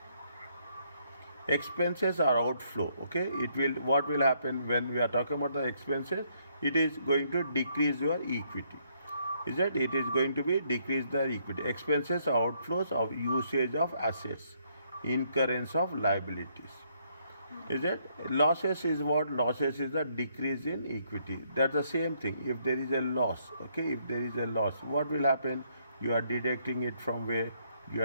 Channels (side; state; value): both; inverted; correlation -0.71